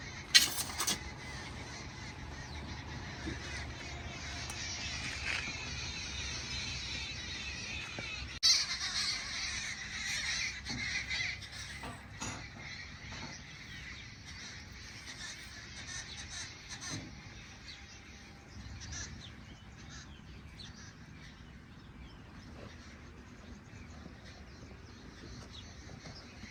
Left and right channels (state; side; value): identical; both; correlation 1.00